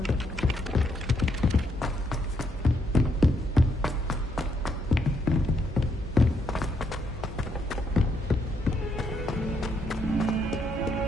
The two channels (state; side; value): normal; both; correlation 0.75